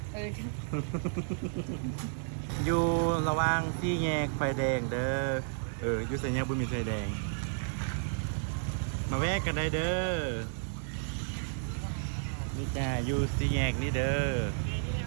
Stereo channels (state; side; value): silent; left; digital silence